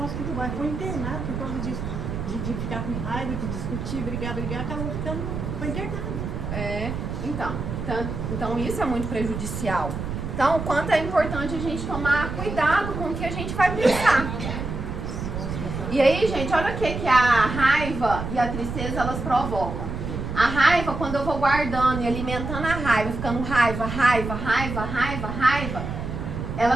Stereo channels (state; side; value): noise; right; rumble, 5 dB below the sound